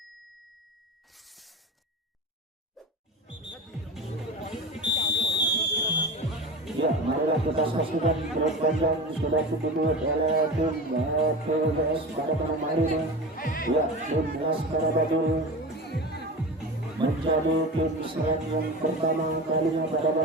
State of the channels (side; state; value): both; normal; correlation 0.29